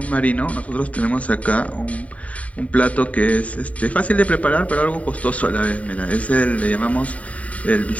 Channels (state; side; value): late; right; 0.068 ms